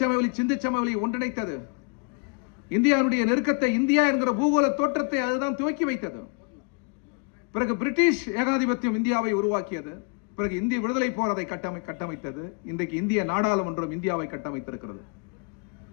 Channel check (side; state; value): right; quieter; 34.5 dB